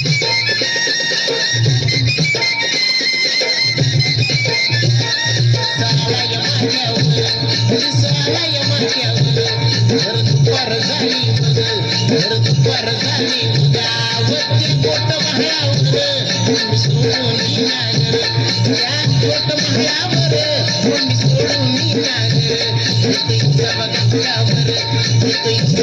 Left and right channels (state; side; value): identical; both; correlation 1.00